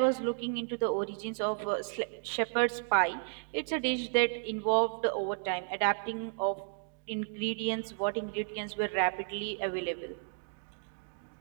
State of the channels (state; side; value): silent; left; digital silence